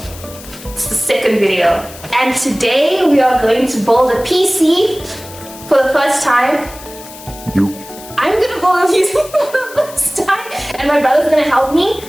It's the second video. And today we are going to build a PC for the first time. I'm gonna build a PC for the first time and my brother's gonna help me.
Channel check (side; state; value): left; noise; hiss, 17 dB below the sound